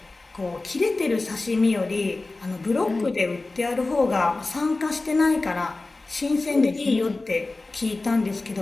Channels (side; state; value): right; quieter; 3.3 dB